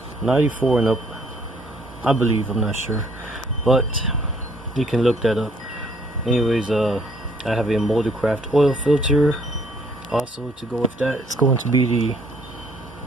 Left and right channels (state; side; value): normal; both; correlation 0.64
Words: 94 and up, I believe. I'm not sure, but you can look that up. Anyways, I have a Moldcraft oil filter. Also, to go with that, it's going to be